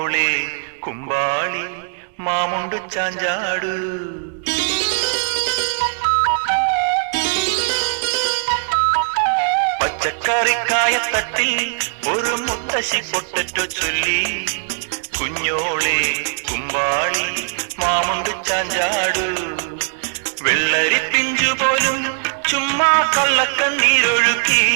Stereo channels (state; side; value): silent; left; digital silence